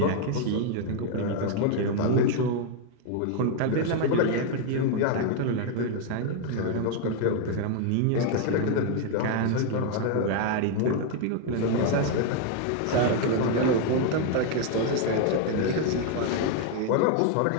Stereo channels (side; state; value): both; different; correlation 0.00